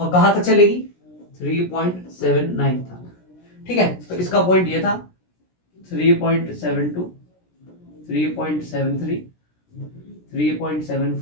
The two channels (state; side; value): late; right; 17 ms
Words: कहां तक चलेगी? 3.79 तक। ठीक है, तो इसका पॉइंट ये था 3.72 3.73